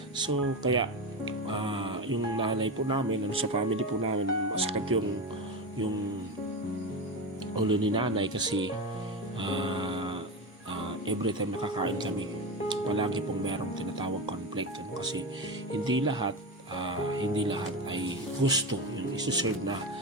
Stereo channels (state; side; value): normal; both; correlation 0.19